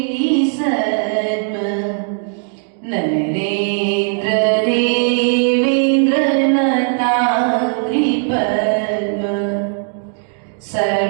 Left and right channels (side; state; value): left; silent; 56 dB below the other